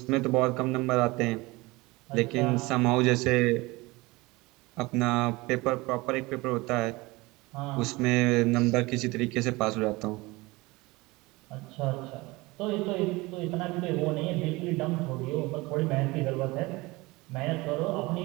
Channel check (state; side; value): quieter; left; 22.4 dB